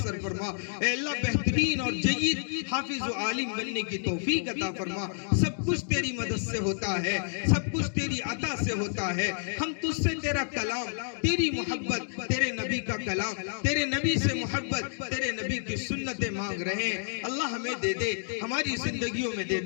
فرما، اے اللہ بہترین اور جید حافظ و عالم بننے کی توفیق عطا فرما۔ سب کچھ تیری مدد سے ہوتا ہے، سب کچھ تیری عطا سے ہوتا ہے، ہم تجھ سے تیرا کلام، تیری محبت، تیرے نبی کا کلام، تیرے نبی سے محبت، تیرے نبی کی سنتیں مانگ رہے ہیں، اللہ ہمیں دے دے، ہماری زندگیوں میں دے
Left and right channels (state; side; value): silent; right; digital silence